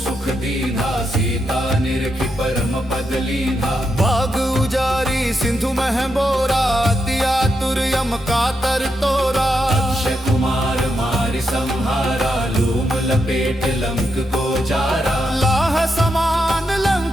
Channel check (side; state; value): both; normal; correlation 0.83